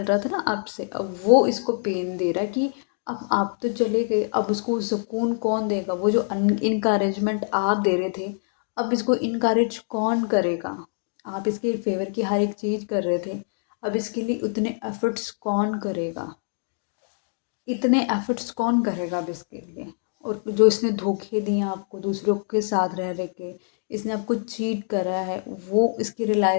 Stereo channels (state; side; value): silent; right; digital silence